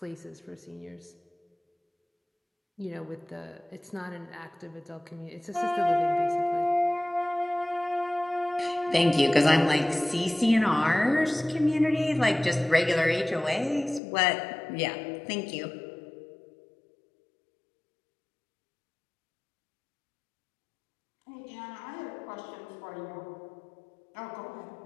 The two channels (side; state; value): right; drops out; at 14.0 s